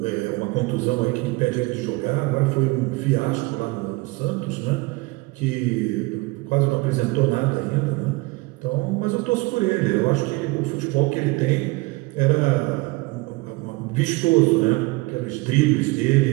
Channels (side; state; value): left; quieter; 23.5 dB